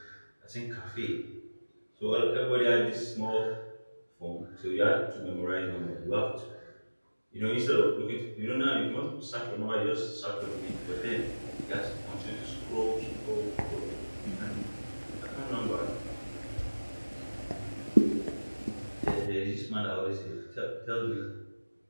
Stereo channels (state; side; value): inverted; both; correlation -1.00